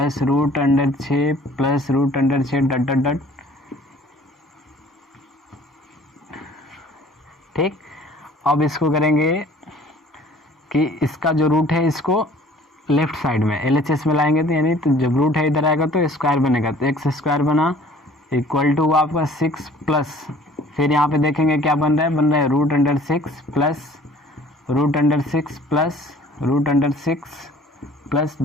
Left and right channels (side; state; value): both; normal; correlation 0.52